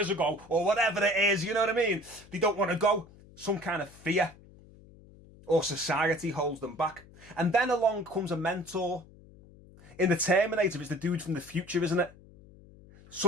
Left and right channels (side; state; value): left; noise; hum, 23 dB below the sound